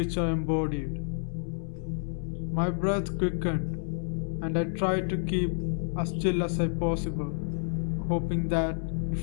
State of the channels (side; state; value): right; silent; 58 dB below the other